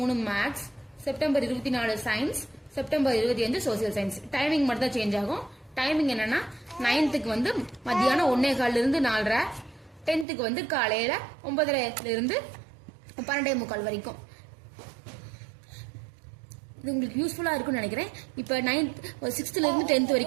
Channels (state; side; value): drops out; left; at 10.2 s